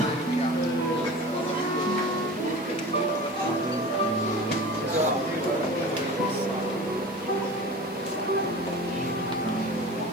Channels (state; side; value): noise; left; hiss, 22 dB below the sound